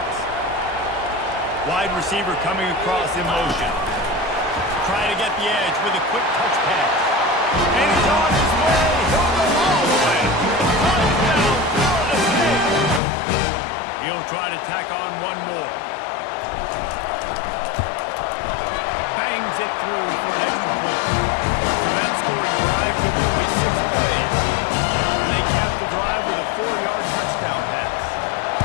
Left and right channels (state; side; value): drops out; right; at 13.0 s